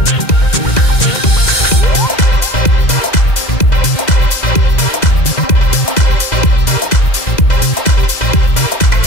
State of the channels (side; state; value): right; late; 2.0 ms